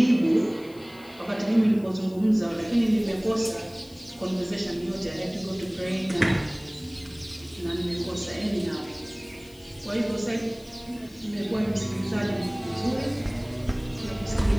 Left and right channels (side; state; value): left; noise; hiss, 25 dB below the sound